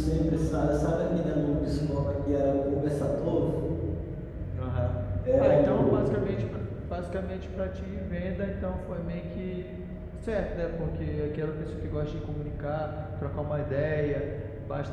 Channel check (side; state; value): both; identical; correlation 1.00